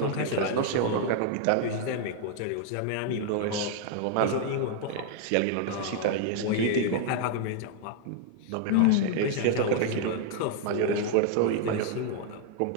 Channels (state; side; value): different; both; correlation 0.00